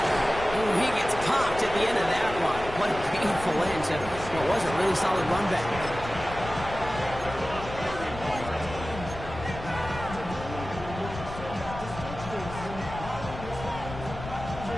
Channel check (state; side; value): noise; left; rumble, 11 dB below the sound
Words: Ooh, he gets popped at the end of that one. What a painful end to what was a really solid run back.